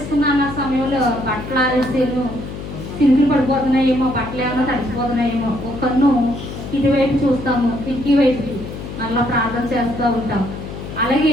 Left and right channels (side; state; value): left; noise; hum, 9 dB below the sound